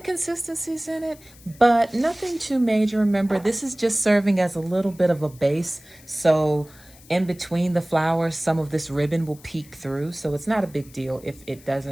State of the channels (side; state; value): left; noise; hiss, 24 dB below the sound